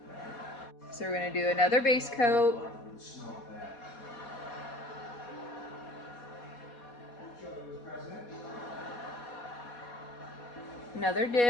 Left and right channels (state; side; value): late; right; 4.2 ms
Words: So we're gonna do another base coat. Another